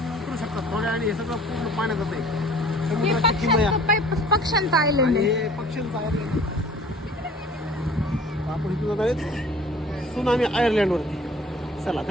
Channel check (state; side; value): normal; both; correlation 0.50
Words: उतरू शकता थोड्या, आणि हे सगळं पूर्ण पाण्यात जात आहे. हे समुद्राची किमया पक्ष्यांचं आयलंड आणि आहे. हे पक्ष्यांचं आयर्लंड. आपण इथून जात आहेत सुनामी आयर्लंडवरती. चला,